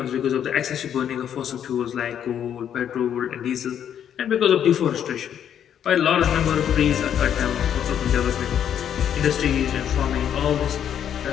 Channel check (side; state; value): right; quieter; 9.3 dB